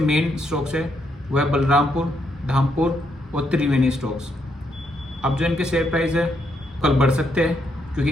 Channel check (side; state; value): both; normal; correlation 0.77